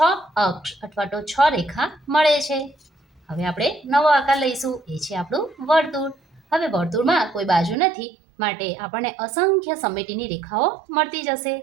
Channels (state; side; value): drops out; left; at 7.8 s